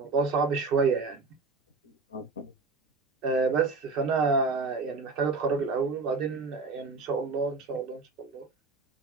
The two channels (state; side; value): quieter; left; 4.1 dB